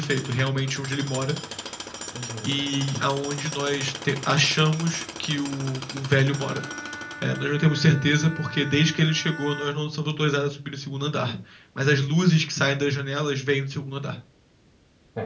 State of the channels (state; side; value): identical; both; correlation 1.00